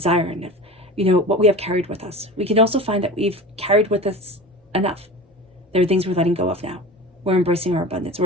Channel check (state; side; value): normal; both; correlation 0.34